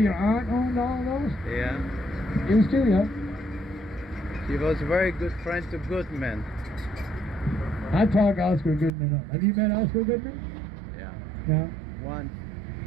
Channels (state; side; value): drops out; left; at 8.9 s